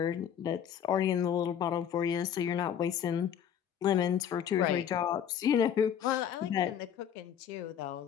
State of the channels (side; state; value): right; quieter; 9.0 dB